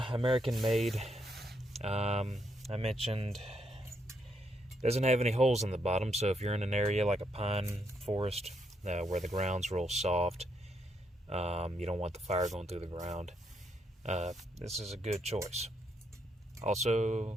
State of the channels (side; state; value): both; normal; correlation 0.76